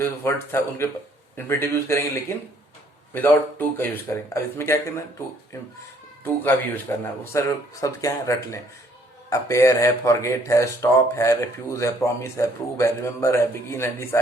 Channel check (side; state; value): both; normal; correlation 0.63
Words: वर्ड था उनके इन्फिनेटिव यूज करेंगे लेकिन विदाउट टू का यूज करेंगे। अब इसमें क्या करना है, टू का भी यूज करना है। वो सारे शब्द क्या है, रट लें। अपेयर है, फॉरगेट है, स्टॉप है, रिफ्यूज है, प्रॉमिस है, प्रूव है, रिमेंबर है, बिगिन है,